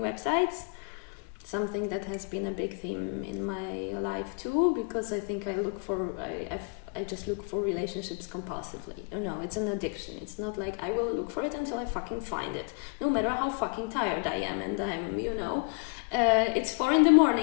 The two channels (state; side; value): quieter; right; 37.5 dB